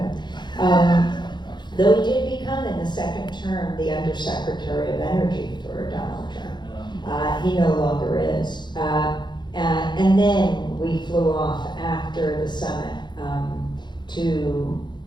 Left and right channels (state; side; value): late; right; 0.21 ms